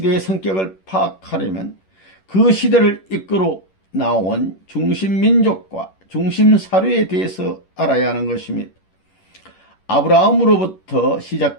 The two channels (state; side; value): late; right; 11 ms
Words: 성격을 파악하려면 그 시대를 이끌어 나온 중심민족과 중심사료에 대해서 알아야 하는 것입니다. 아브라함으로부터